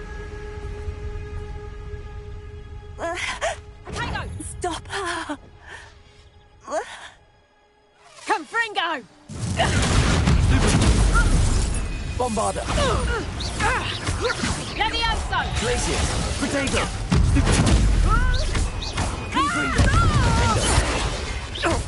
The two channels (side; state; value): both; identical; correlation 1.00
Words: Stop her! Fringo! Bombarder! Levioso! Glacier! Protego! Confringo!